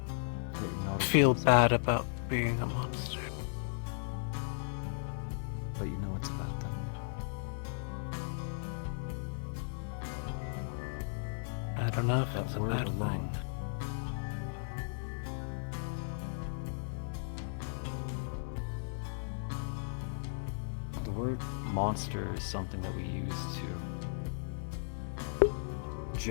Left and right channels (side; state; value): right; silent; digital silence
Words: feel bad about being a monster. But you know it's a bad thing. I don't know if That it's a word bad alone. thing. The word monster is something that we use to